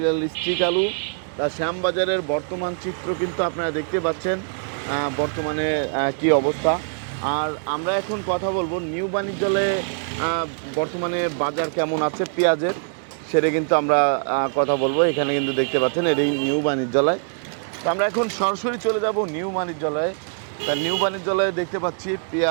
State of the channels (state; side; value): silent; left; 63 dB below the other